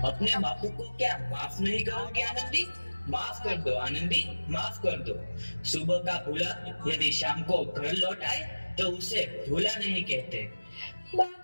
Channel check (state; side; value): inverted; both; correlation -1.00